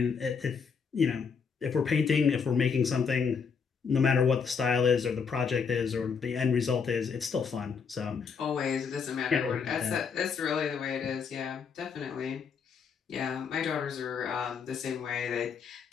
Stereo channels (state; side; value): quieter; right; 6.0 dB